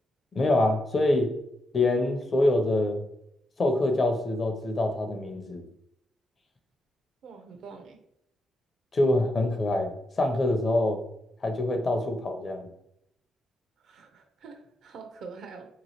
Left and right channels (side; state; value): both; normal; correlation 0.84